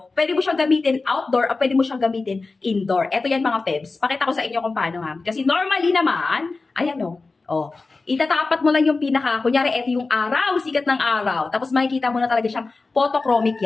pwede mo siyang gamitin outdoor o pwede mo siyang gamitin indoor. Ito yan, mga pebs. Pakita ko sa inyo kung paano, ha. Kasi normally naman, ayan o. Oh, itatapat mo lang yung kunyari, ito yung araw, sikat ng araw. Tapos makikita mo na talaga siyang photochromic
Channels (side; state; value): right; quieter; 3.8 dB